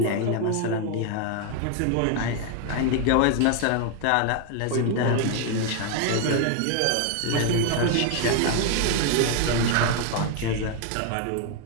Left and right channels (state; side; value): different; both; correlation 0.01